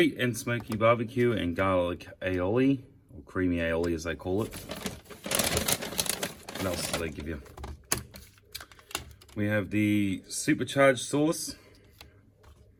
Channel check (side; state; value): both; identical; correlation 1.00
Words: and smoky barbecue and garlic aioli, or creamy aioli as they call it. What else do they give you? We have the supercharged sauce,